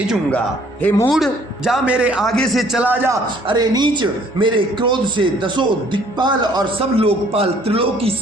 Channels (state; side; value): normal; both; correlation 0.59